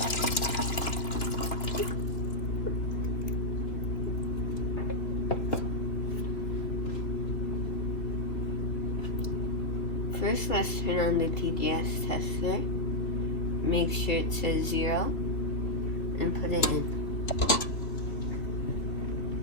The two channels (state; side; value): late; right; 3.2 ms